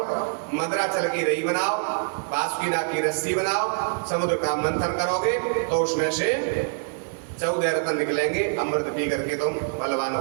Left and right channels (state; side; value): silent; left; 62 dB below the other